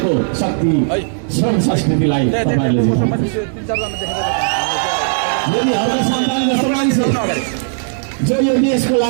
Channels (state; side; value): silent; left; 65 dB below the other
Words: शक्ति श्रम संस्कृतिलाई तपाईहरुले जिताउनु। यदि हर सन्तान जस्तो मान्छे जो यो देशको